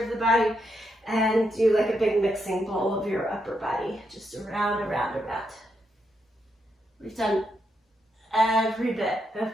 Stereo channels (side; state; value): both; normal; correlation 0.81